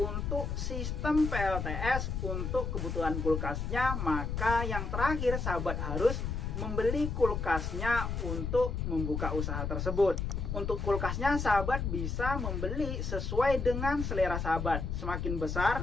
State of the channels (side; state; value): left; noise; rumble, 2 dB below the sound